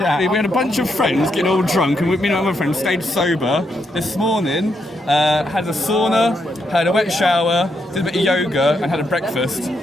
had a bunch of friends getting all drunk, and me and my friends stayed sober. This morning, had a sauna, had a wet shower, did a bit of yoga, and had a breakfast.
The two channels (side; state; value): both; normal; correlation 0.80